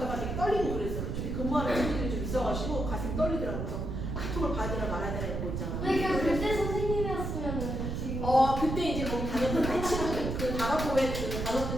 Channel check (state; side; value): noise; right; rumble, 3 dB below the sound